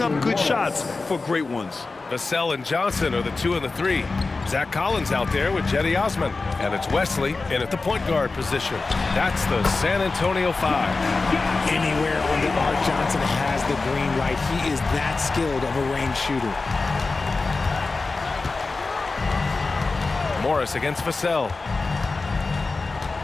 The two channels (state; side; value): quieter; right; 3.8 dB